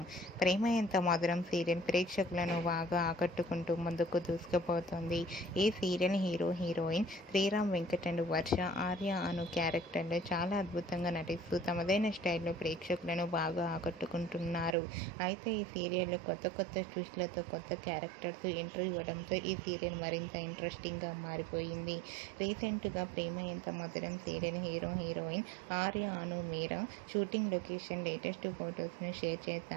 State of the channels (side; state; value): left; drops out; at 14.8 s